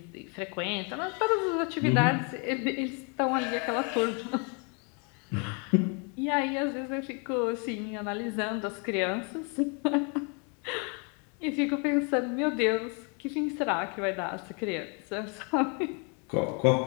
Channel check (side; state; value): right; quieter; 35.9 dB